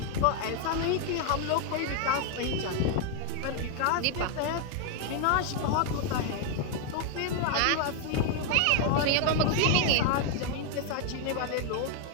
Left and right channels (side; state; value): both; different; correlation 0.00